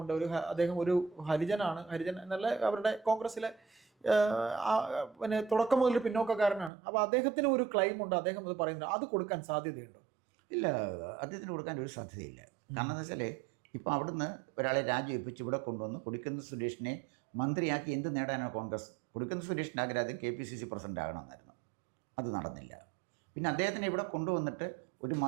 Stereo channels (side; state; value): left; drops out; at 6.7 s